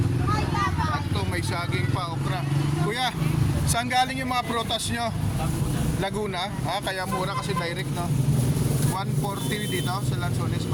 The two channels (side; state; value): both; identical; correlation 1.00